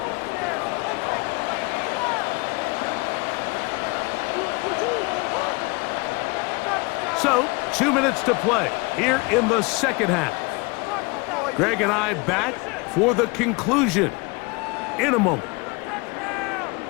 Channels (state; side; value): quieter; right; 27.4 dB